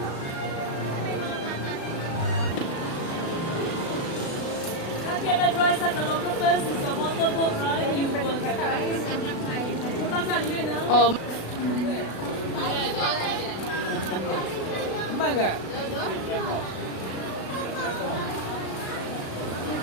guys at the local first is a motorboat ride. You will get Oh, Mangga.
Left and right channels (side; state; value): right; late; 36 ms